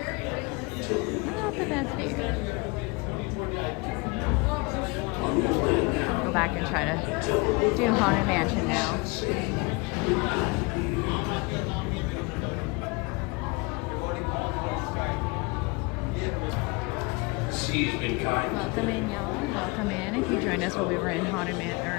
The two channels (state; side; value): quieter; right; 27.8 dB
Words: not the best view. I'll go back and try to do Haunted Mansion now. Welcome in, y'all. Welcome in. If you joined us while we were in Haunted